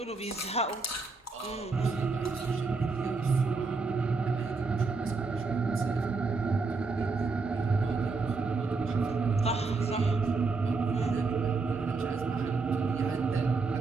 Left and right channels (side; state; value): left; quieter; 4.2 dB